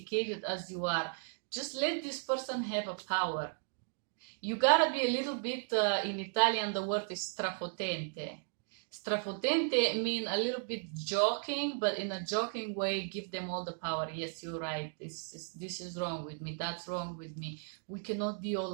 as you are. Just let this person have a power. You gotta be a little bit, in Italian the word is strafotente. Strafotente mean a little bit joking, but in a joking way, give them all the power. Yes, you're right. This is wrong with me. That's wrong with me. We cannot be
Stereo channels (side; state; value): left; silent; 54 dB below the other